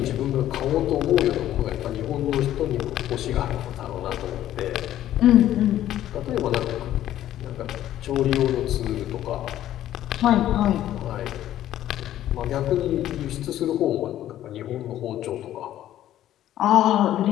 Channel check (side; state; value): right; quieter; 12.5 dB